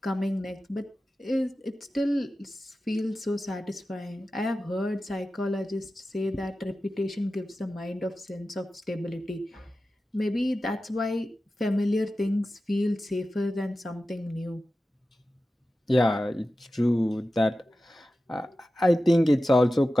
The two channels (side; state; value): both; normal; correlation 0.94